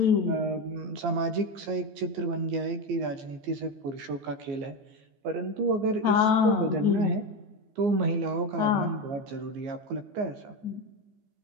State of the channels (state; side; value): late; left; 15 ms